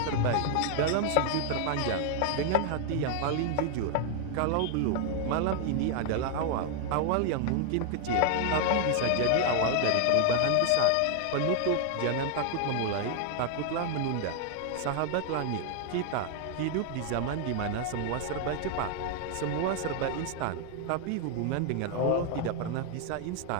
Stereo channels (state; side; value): different; both; correlation 0.00